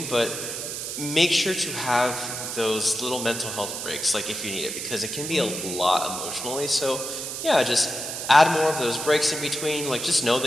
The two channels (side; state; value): right; noise; hiss, 5 dB below the sound